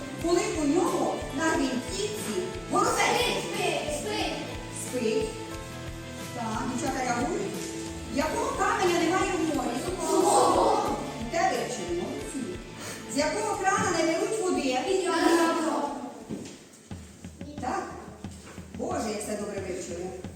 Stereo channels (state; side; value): identical; both; correlation 1.00